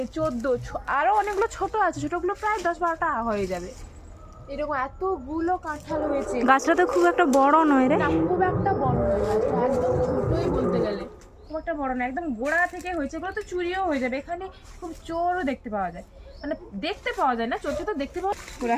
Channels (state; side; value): identical; both; correlation 1.00